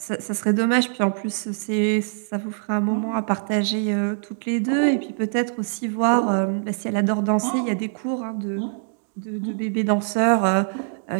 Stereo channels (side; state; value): left; silent; digital silence